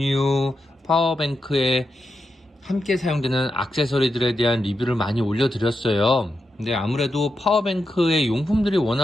파워뱅크에 함께 사용되는 액세서리들에 대한 리뷰를 많이 올려드렸어요. 근데 아무래도 파워뱅크의 용품들이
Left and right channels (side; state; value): both; normal; correlation 0.87